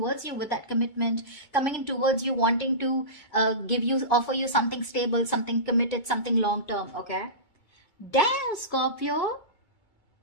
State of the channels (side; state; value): right; late; 2.2 ms